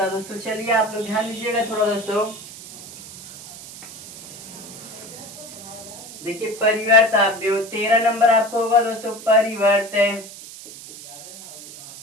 है दोस्तों, चलिए आप लोग ध्यान दीजिएगा थोड़ा दोस्तों। देखिए परिवर्त अवयव 13 नंबर आपको होगा दोस्तों। परिवर्त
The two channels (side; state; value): right; noise; hiss, 15 dB below the sound